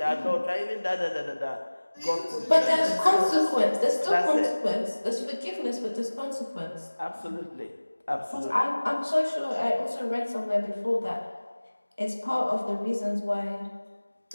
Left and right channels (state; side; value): inverted; both; correlation -1.00